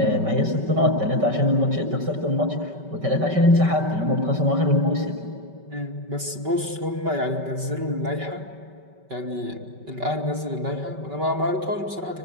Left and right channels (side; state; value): left; late; 5.2 ms